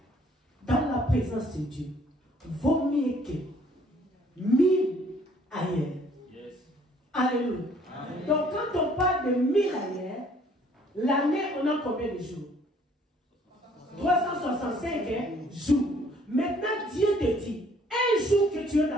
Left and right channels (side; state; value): both; normal; correlation 0.60